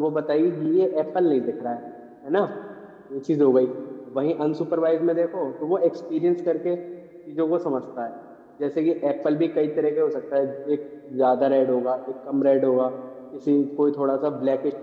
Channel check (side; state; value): both; identical; correlation 1.00